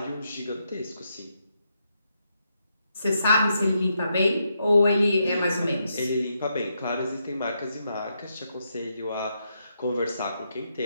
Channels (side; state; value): both; inverted; correlation -0.81